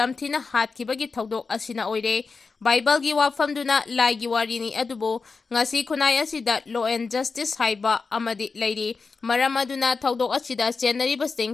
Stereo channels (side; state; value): right; quieter; 4.5 dB